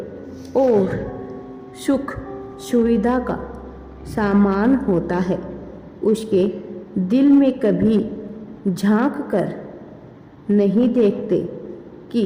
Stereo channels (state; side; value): identical; both; correlation 1.00